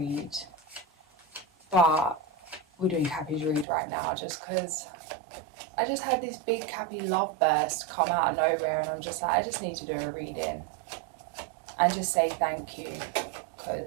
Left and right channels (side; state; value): left; drops out; at 3.7 s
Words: But we're doing Cappy's read right now just because I just had this big Cappy love burst come out of nowhere. And I'm just like, I just need to do a reading and just say thank you,